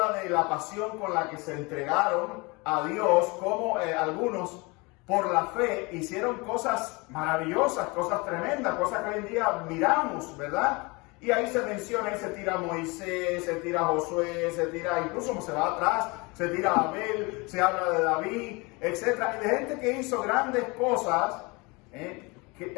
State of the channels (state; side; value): quieter; right; 26.6 dB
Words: de la pasión con la que se entregaron a Dios, como algunos por la fe hicieron cosas maravillosas, cosas tremendas, cosas que hoy en día miramos, ¿verdad? Y ahí se menciona, y se tira a Moisés, se tira a Josué, se tira, incluso como se va atrás, se tira a Abel, se habla de David, etc. Y de gente que hizo grandes cosas,